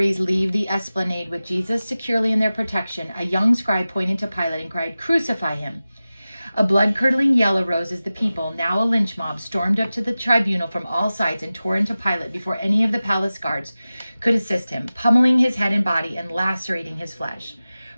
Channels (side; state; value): both; inverted; correlation -0.96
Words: leave the esplanade with Jesus securely in their protection, a young scribe pointed to Pilate and cried, "Crucify him." A blood-curdling yell arose as the people, now a lynch mob, stormed up to the tribunal from all sides and tore into Pilate before any of the palace guards could assist him, pummeling his head and body and lacerating his flesh.